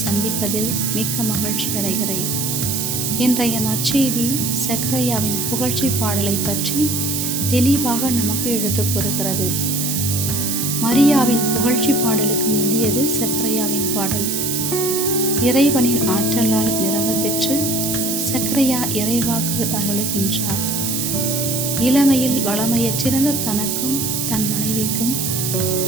சந்திப்பதில் மிக்க மகிழ்ச்சி அடைகிறேன். இன்றைய நற்செய்தி சக்கரையாவின் புகழ்ச்சி பாடலை பற்றி தெளிவாக நமக்கு எடுத்துக் கூறுகிறது. மரியாவின் புகழ்ச்சி பாடலுக்கு முந்தியது சக்கரையாவின் பாடல். இறைவனின் ஆற்றலால் நிரம்ப பெற்று சக்கரையா இறைவாக்கு அருளுகின்றார். இளமையில் வளமையற்றிருந்த தனக்கும் தன் மனைவிக்கும்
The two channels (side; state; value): right; noise; hiss, 1 dB below the sound